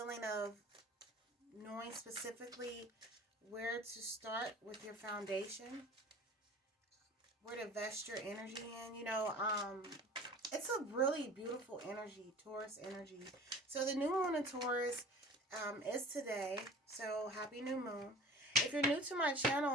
of knowing specifically where to start with your foundation, where to vest your energy in. It's a really beautiful energy, Taurus energy. So the new moon in Taurus is today. So happy new moon. If you're new to my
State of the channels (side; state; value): both; normal; correlation 0.43